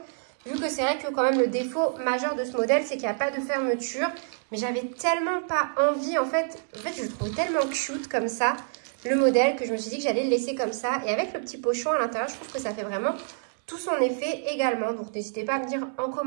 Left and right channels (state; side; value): silent; left; 60 dB below the other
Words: vu que c'est vrai que quand même le défaut majeur de ce modèle c'est qu'il n'y a pas de fermeture. Mais j'avais tellement pas envie, en fait je le trouve tellement cute comme ça le modèle, que je me suis dit que j'allais le laisser comme ça. Et avec le petit pochon à l'intérieur, je trouve que ça fait vraiment tout son effet également. Donc n'hésitez pas à me dire en